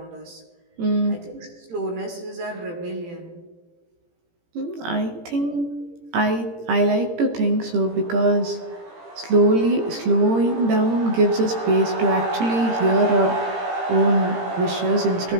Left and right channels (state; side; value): late; left; 18 ms